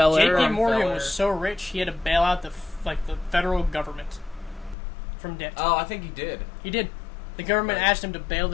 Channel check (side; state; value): right; drops out; at 4.8 s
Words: J.P. Morgan was so rich he had to bail out the federal government from debt. Oh, I think he did. He did. The government asked him to bail